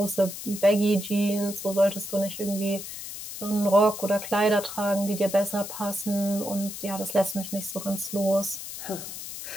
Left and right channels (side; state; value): left; noise; hiss, 9 dB below the sound